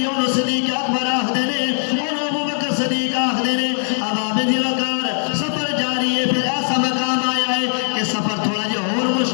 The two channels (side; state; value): right; silent; digital silence